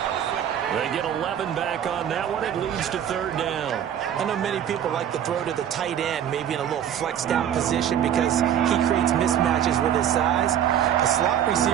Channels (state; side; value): quieter; left; 9.8 dB